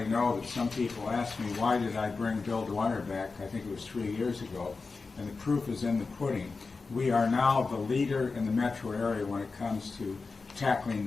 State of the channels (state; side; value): quieter; right; 4.2 dB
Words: know that some people ask me, why did I bring Bill Dwyer back? I think it was 3 years ago, and the proof is in the pudding. We are now the leader in the metro area when it comes to tackling